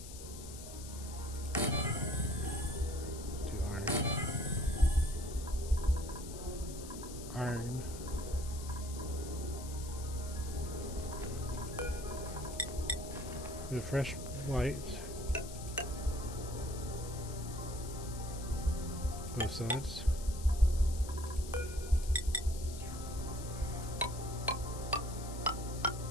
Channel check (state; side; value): noise; left; hiss, 13 dB below the sound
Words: Let's do iron. Iron. With fresh white. Both sides.